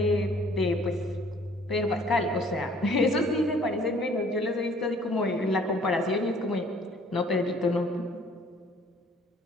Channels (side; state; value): both; normal; correlation 0.57